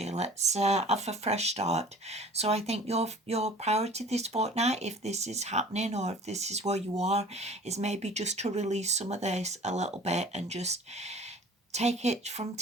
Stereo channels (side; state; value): both; normal; correlation 0.46